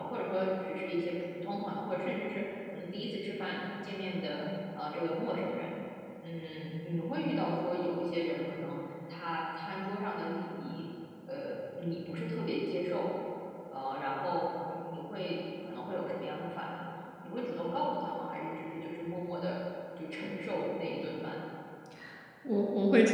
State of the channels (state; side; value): identical; both; correlation 1.00